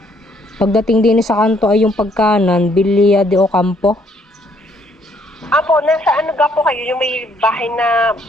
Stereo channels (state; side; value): normal; both; correlation 0.67